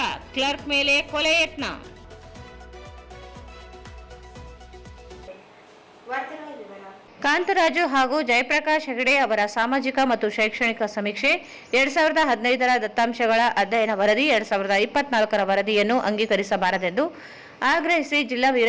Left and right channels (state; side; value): identical; both; correlation 1.00